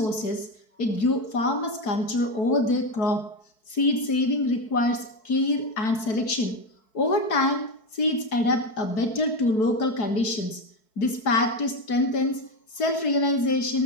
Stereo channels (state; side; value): late; right; 4.6 ms